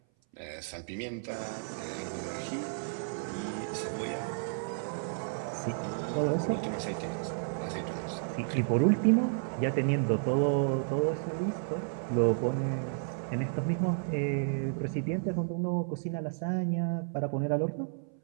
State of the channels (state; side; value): silent; left; 56 dB below the other